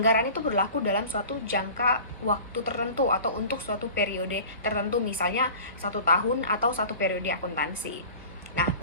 itu berlaku dalam suatu jangka waktu tertentu atau untuk suatu periode tertentu, misalnya 1 tahun atau 1 periode akuntansi. Nah,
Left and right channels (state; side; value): inverted; both; correlation -0.41